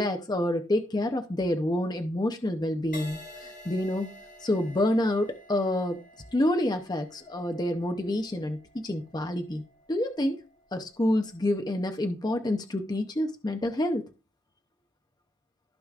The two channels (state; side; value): normal; both; correlation 0.81